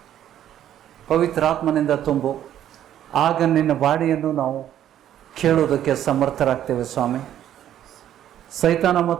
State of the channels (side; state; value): left; quieter; 11.1 dB